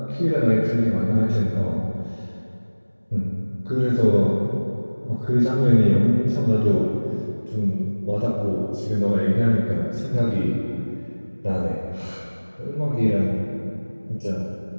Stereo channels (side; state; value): both; inverted; correlation -1.00